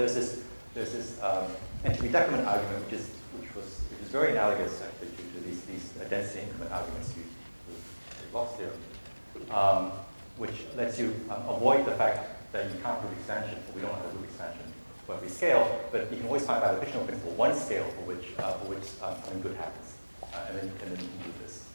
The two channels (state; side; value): inverted; both; correlation -1.00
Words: this entropy decrement argument, which is very analogous actually to these density increment arguments used with Bloch's theorem, which lets you avoid the fact that you can't prove expansion, or we don't have a proof expansion for every scale, but you can always find by the fictional principle one scale for which something good happens, and then you can do this.